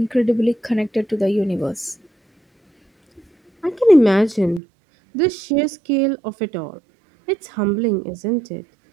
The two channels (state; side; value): drops out; left; at 4.6 s